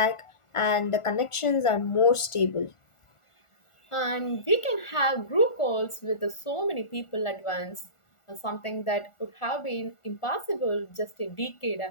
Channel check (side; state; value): right; late; 1.4 ms